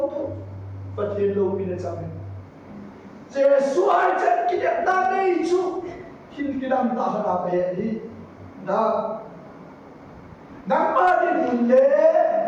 thông và thiên lâu bên trong này Giêsu ai chân cái đẹp ta đây chú khi cái đam ta phải làm cái gì đó nắng mà đi buồn lệ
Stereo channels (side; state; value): both; identical; correlation 1.00